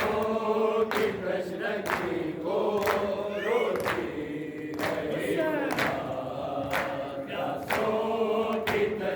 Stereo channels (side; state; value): both; identical; correlation 1.00